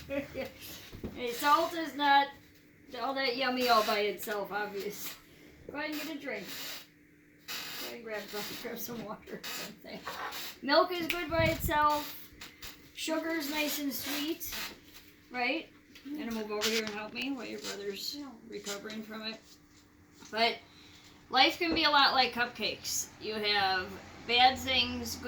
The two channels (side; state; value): both; identical; correlation 1.00